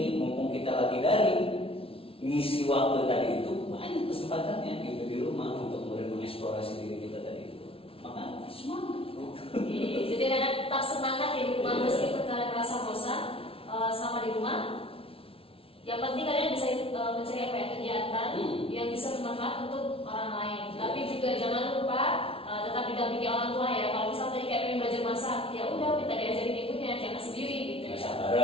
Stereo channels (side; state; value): right; late; 0.26 ms